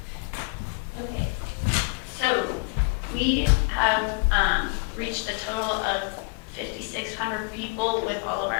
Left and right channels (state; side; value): quieter; right; 34.1 dB